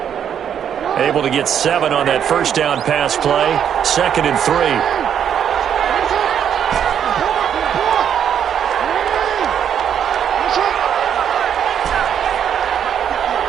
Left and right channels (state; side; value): quieter; left; 8.8 dB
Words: Able to get 7 on that first down pass play. 2nd and 3.